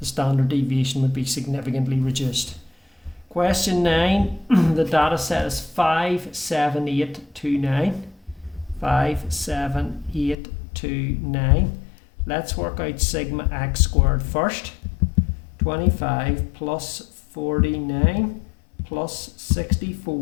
standard deviation would be significantly reduced. Question 9, the data set is 57829. 57829. Let's work out sigma x squared first. 25 plus 49 plus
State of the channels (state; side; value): drops out; right; at 10.4 s